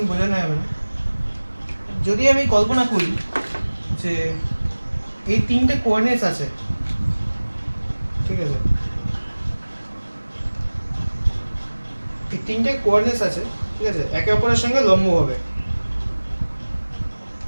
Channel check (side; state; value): both; inverted; correlation -1.00